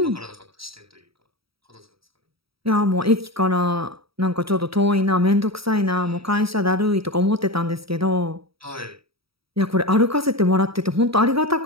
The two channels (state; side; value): late; left; 0.76 ms